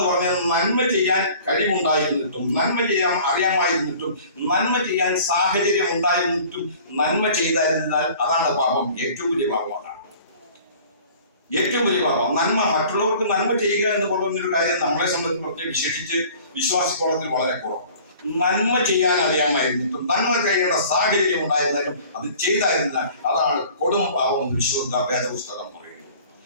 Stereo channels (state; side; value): inverted; both; correlation -0.48